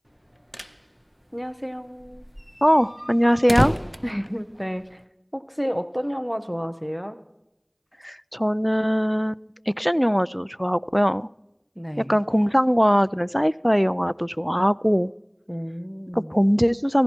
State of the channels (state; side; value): identical; both; correlation 1.00